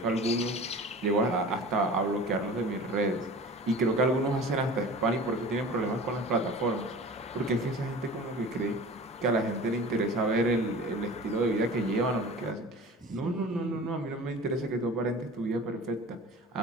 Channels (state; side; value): normal; both; correlation 0.39